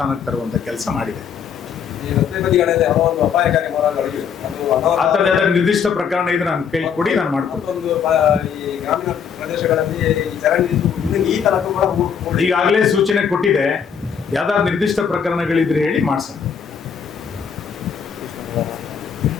ತರುವಂತ ಕೆಲಸ ಮಾಡಿದೆ. ಆ ಥರದ ನಿರ್ದಿಷ್ಟ ಪ್ರಕರಣ ಇದ್ರೆ ನನ್ನ ಕೈ ಕೊಡಿ, ನಾನು ಮಾಡ್ಕೊಡ್ತೀನಿ. ಈಗಾಗಲೇ ಸೂಚನೆ ಕೊಟ್ಟಿದೆ, ಯಾವ್ದಾದ್ರು ನಿರ್ದಿಷ್ಟ ಪ್ರಕರಣಗಳಿದ್ರೆ ಹೇಳಿ ಮಾಡ್ಸೋಣ.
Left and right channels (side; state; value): right; quieter; 7.2 dB